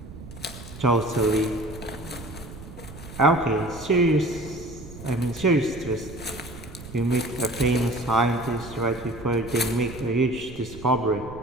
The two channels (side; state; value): right; noise; rumble, 14 dB below the sound